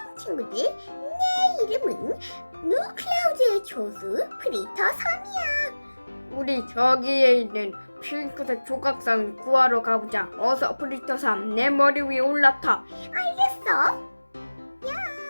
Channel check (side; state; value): both; inverted; correlation -1.00